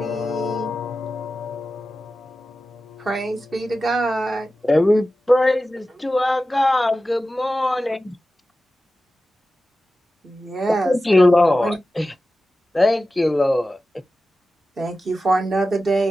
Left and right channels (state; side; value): normal; both; correlation 0.94